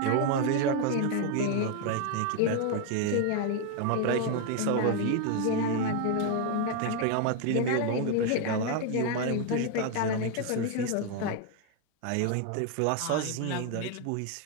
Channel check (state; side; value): different; both; correlation 0.01